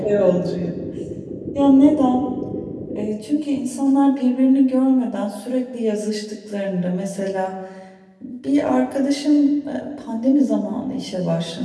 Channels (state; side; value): identical; both; correlation 1.00